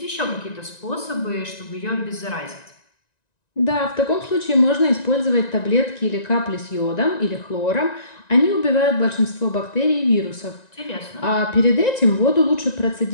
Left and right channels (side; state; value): right; late; 1.9 ms